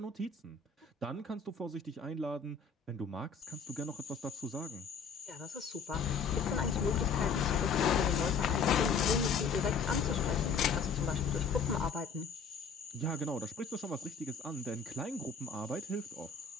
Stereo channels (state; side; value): quieter; right; 5.3 dB